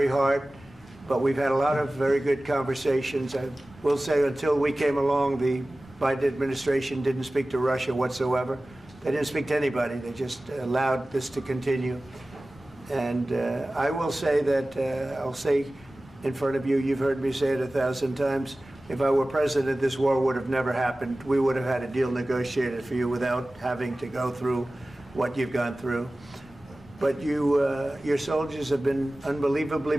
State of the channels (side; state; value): both; normal; correlation 0.97